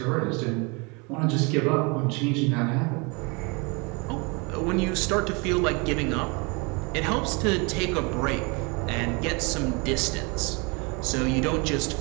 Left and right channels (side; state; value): left; quieter; 29.8 dB